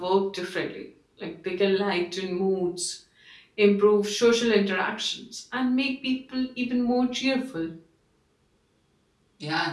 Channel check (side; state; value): both; identical; correlation 1.00